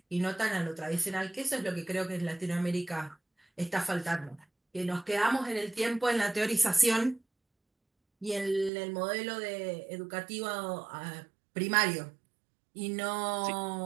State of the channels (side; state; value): left; drops out; at 8.7 s